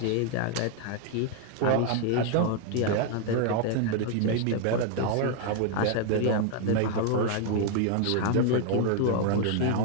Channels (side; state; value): both; different; correlation 0.00